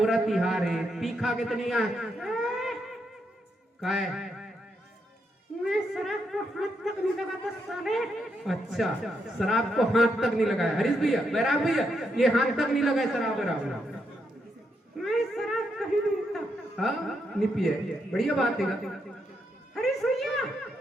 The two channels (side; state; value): both; normal; correlation 0.80